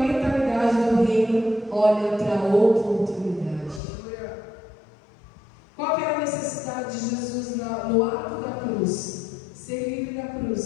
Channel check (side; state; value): right; drops out; at 3.8 s